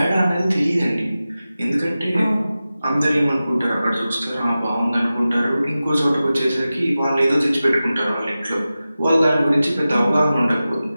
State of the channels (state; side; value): inverted; both; correlation -0.95